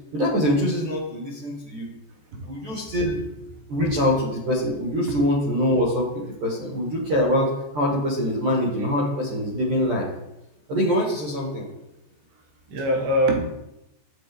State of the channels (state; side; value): late; left; 14 ms